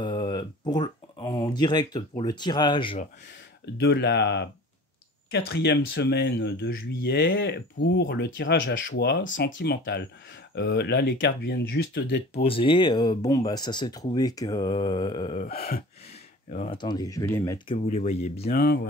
en direct pour le tirage de la 4e semaine de juillet pour le tirage à choix sentimental. Là, les cartes viennent juste d'être posées. Ça s'est trouvé que... attendez, je vais les mettre que vous les voyez bien,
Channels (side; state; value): both; normal; correlation 0.41